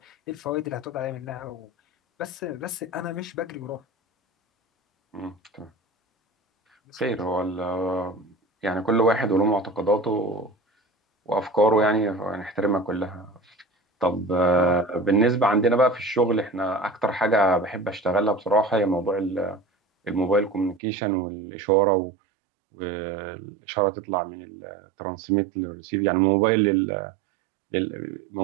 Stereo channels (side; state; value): left; drops out; at 20.8 s